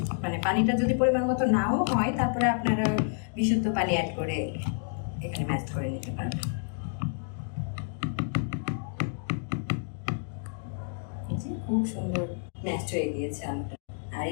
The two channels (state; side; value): silent; right; digital silence